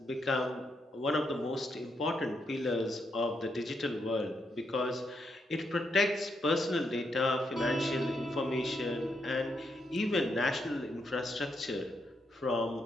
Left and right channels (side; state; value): both; normal; correlation 0.80